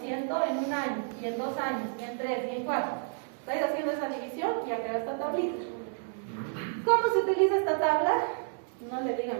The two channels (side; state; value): left; silent; digital silence